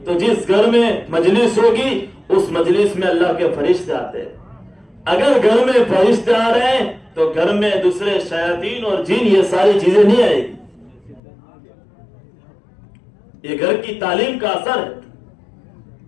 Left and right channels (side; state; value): right; drops out; at 11.2 s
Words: تو جس گھر میں مجلس ہوگی اس مجلس میں اللہ کے فرشتے آتے ہیں۔ اگر گھر میں فرشتے آ رہے ہیں تو گھر میں دوسرے شیاطین اور جن یہ ساری چیزیں نہیں آئے گی۔ یہ گھر کی تعلیم کا اثر ہے۔